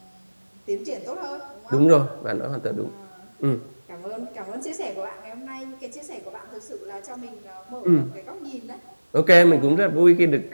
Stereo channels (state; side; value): inverted; both; correlation -1.00